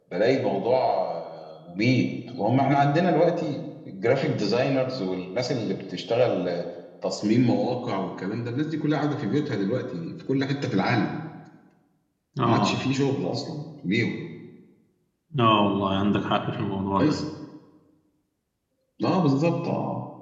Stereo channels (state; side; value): identical; both; correlation 1.00